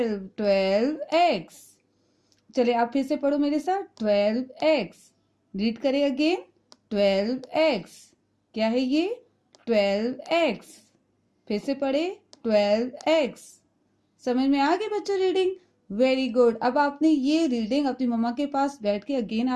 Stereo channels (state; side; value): identical; both; correlation 1.00